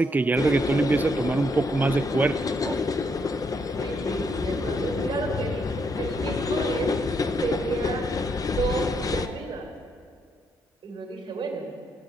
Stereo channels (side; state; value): both; normal; correlation 0.75